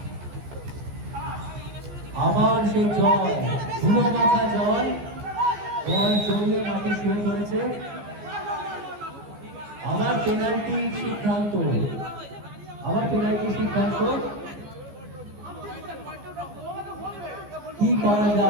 আবার সেই জয়, ধুলো মাখা জয়, বল জড়িয়ে মাঠে শুয়ে পড়েছে। আবার পেনাল্টির সিদ্ধান্ত, আবার পেনাল্টির সিদ্ধান্ত। কি করা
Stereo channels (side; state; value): left; late; 14 ms